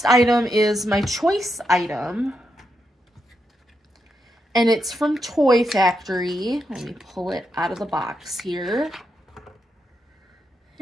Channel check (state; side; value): normal; both; correlation 0.83